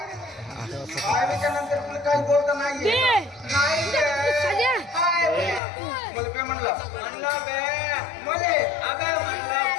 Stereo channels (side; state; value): right; drops out; at 5.6 s